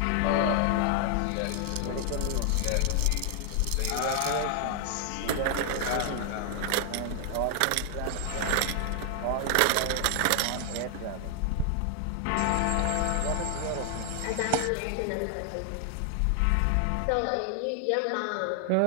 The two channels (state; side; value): different; both; correlation 0.00